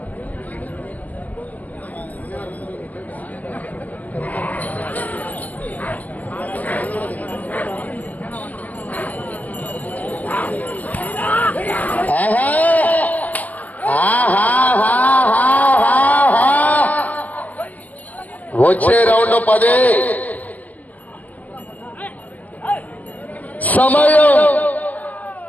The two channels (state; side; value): late; right; 0.075 ms